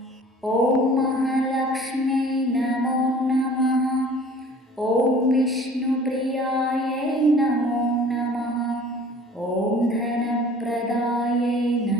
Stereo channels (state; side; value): normal; both; correlation 0.48